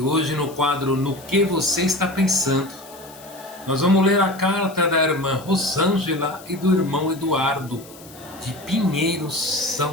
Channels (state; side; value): noise; left; hiss, 20 dB below the sound